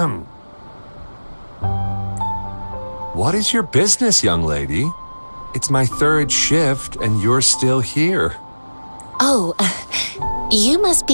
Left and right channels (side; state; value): both; inverted; correlation -1.00